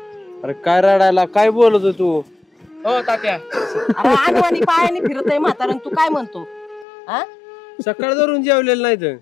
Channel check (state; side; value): drops out; right; at 6.9 s